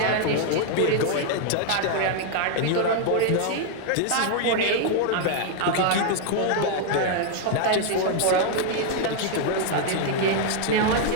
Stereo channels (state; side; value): different; both; correlation 0.00